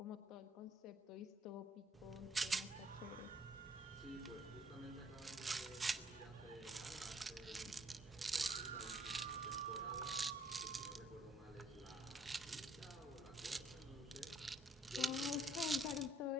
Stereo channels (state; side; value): normal; both; correlation 0.64